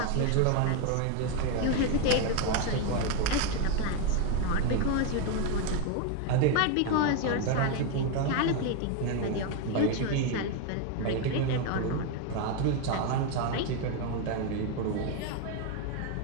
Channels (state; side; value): different; both; correlation 0.02